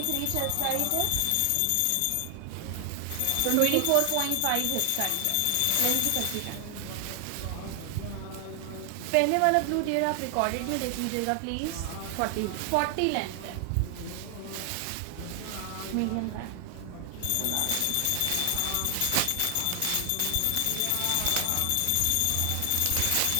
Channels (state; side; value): different; both; correlation 0.00